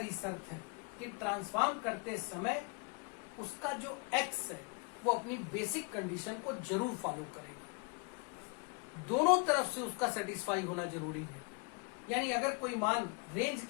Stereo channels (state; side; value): quieter; right; 33.5 dB